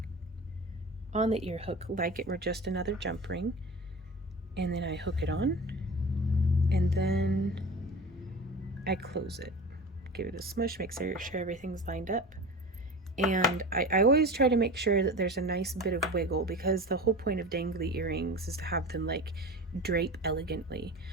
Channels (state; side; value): normal; both; correlation 0.34